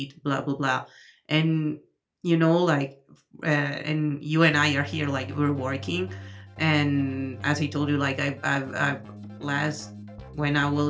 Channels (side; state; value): both; identical; correlation 1.00